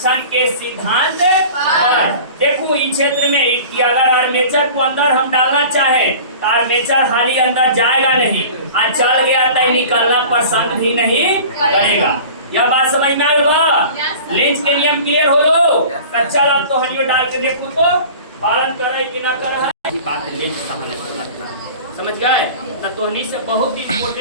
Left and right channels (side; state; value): both; inverted; correlation -0.40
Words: के सिद्धांत पर। देखो इस क्षेत्र में कि अगर आर्मेचर को अंदर हम डालना चाहें तो आर्मेचर हाली अंदर जाएगा नहीं, और चल गया तो निकलना पसंद भी नहीं करेगा। यह बात समझ में आएगा। लेंज के नियम क्लियर हो लो। कच्चा अब तो हलियो डाल के देखो तो पालन करे कि ना करे। बात लेंज कहानी समझ गए। तो से बहुत